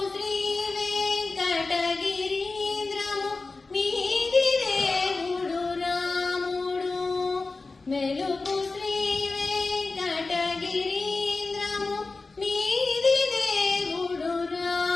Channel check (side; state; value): right; quieter; 3.7 dB